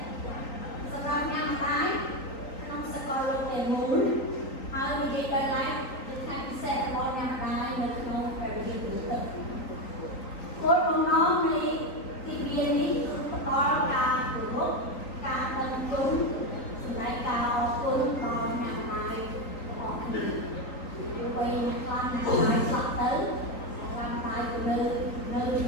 សម្រាប់អ្នកម្ដាយក្នុងសកលលោកទាំងមូលហើយនិយាយដល់ឡែកជាថ្ងៃពិសេសរបស់អ្នកម្ដាយនៅក្នុងព្រះវិហារនេះគោលបំណងនៃទីវានេះគឺផ្ដល់ការគោរពការដឹងគុណសម្រាប់ការអរគុណដល់អ្នកម្ដាយរបស់គ្នាវ័យខ្លាំងអ្នកម្ដាយស្លាប់ទៅអ្នកម្ដាយក៏នៅជា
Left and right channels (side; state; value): right; late; 3.9 ms